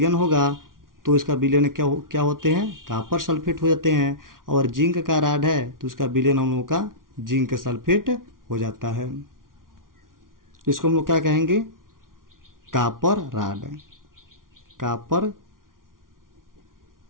होगा तो इसका विलयन क्या होते हैं, कापर सल्फेट हो जाते हैं। और जिंक का राड है तो उसका विलयन हम लोग का जिंक सल्फेट हो जाता है। इसको हम लोग क्या कहेंगे, कापर राड। कापर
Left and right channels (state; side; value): late; left; 0.90 ms